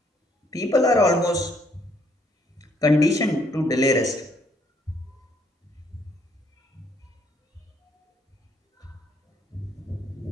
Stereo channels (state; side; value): normal; both; correlation 0.68